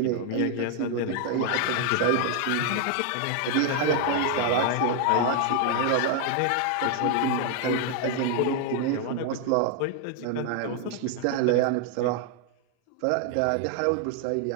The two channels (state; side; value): different; both; correlation 0.00